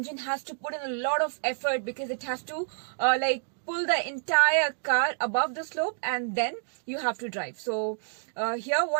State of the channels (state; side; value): silent; left; digital silence